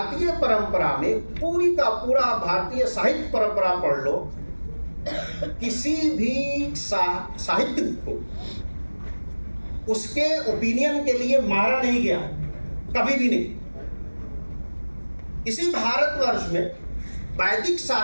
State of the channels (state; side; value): inverted; both; correlation -1.00